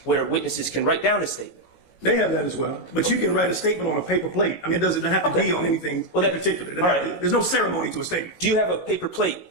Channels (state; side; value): late; right; 17 ms